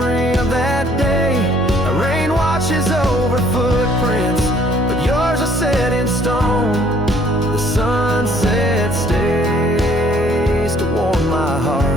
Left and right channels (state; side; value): normal; both; correlation 0.61